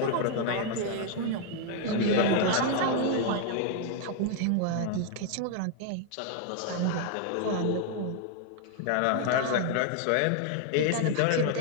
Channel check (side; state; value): both; different; correlation 0.00